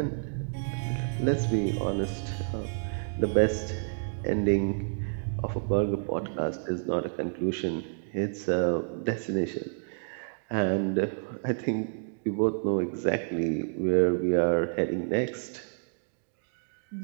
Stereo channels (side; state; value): left; silent; digital silence